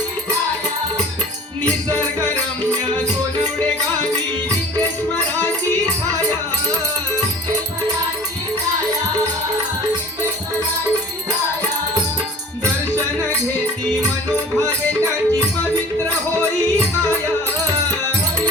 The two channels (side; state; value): both; normal; correlation 0.45